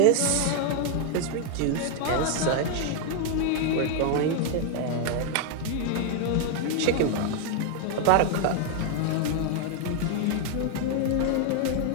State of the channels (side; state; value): both; different; correlation 0.00